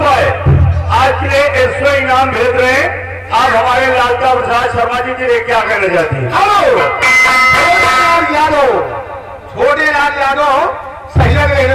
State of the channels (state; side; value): identical; both; correlation 1.00